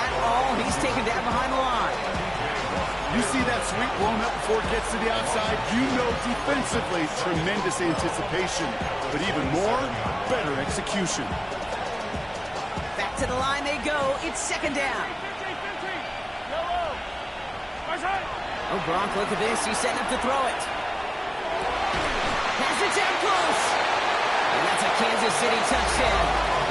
all. He's taken down behind the line. You see that sweep blown up before it gets to the outside, you know defensively, tremendous anticipation. But even more, better execution. Back to the line they go. It's second down. Oh, Gronk, look at this. He's setting up to throw it. Pass it down close. And that's a Kansas City touchdown.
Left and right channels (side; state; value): both; identical; correlation 1.00